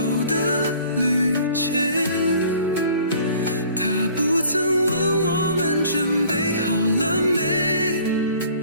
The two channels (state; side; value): inverted; both; correlation -0.52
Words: 的旅程，它不曾问我们准备好了没，